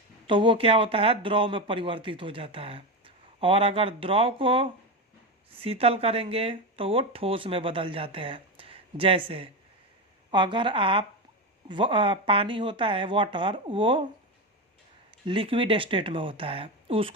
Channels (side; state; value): both; normal; correlation 0.16